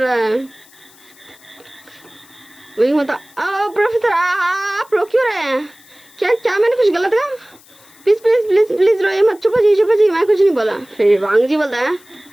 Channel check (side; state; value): left; noise; hiss, 26 dB below the sound